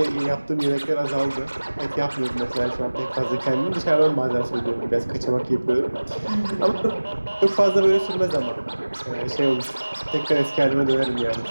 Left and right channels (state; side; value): inverted; both; correlation -1.00